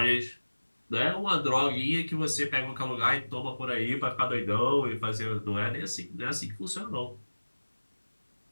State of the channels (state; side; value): inverted; both; correlation -1.00